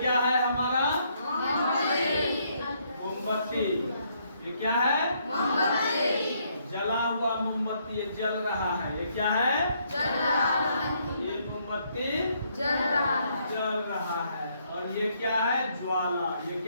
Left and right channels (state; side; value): inverted; both; correlation -0.72